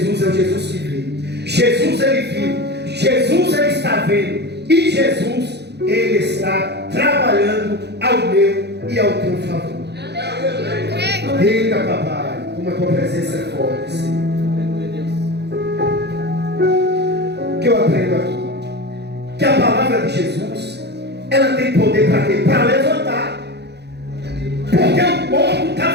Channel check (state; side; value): late; left; 0.49 ms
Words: é o Jesus que vê. Jesus, ele viu, Jesus, ele está vendo, e Jesus, ele está trabalhando ao meu e ao teu favor. Eita, papai, como a tua presença é forte, Senhor. O que eu aprendo aqui? Que a palavra de Jesus, ela tem poder para quê? Para levantar. Porque o morto